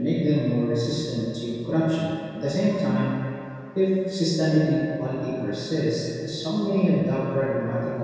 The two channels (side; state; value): both; identical; correlation 1.00